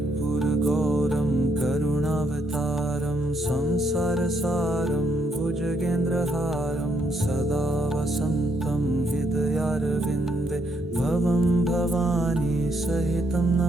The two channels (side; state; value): both; normal; correlation 0.74